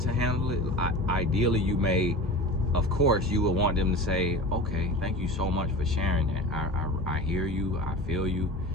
handle it. Ideally, you may, of course, you would want them to say, okay, thank you so much for sharing that. I hear you, I feel you,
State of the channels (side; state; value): both; normal; correlation 0.33